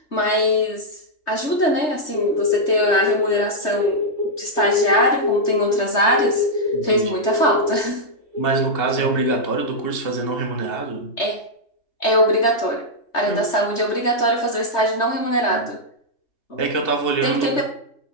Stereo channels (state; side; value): late; right; 3.3 ms